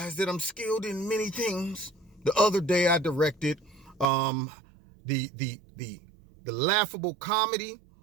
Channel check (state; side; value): drops out; left; at 4.0 s